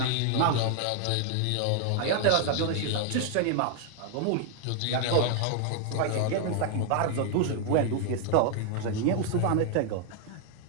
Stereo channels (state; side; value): different; both; correlation 0.00